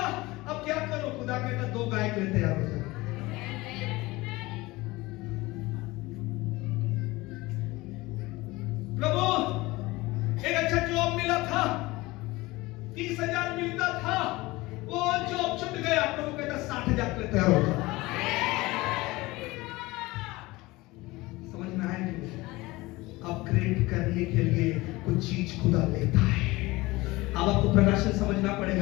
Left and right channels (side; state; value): right; quieter; 20.9 dB